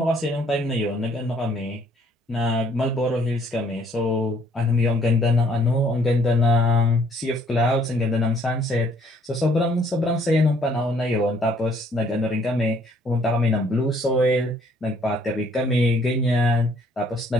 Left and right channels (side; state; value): both; normal; correlation 0.63